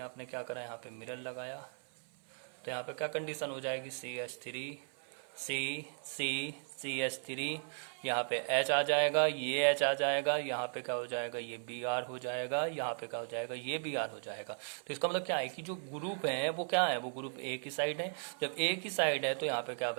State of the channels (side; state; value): left; silent; 53 dB below the other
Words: आपने क्या करा, यहाँ पे मिरर लगाया, तो यहाँ पे क्या कंडीशन हो जाएगी, CH3 CH3, यहाँ पे H आ जाएगा, ये H आ जाएगा, यहाँ पे क्या हो जाएगा, ये Br हो जाएगा, यहाँ पे क्या हो जाएगा, ये Br हो जाएगा। तो इसका मतलब क्या है कि जो ग्रुप है वो क्या है, वो ग्रुप एक ही साइड है। जब एक ही साइड है तो यहाँ पे क्या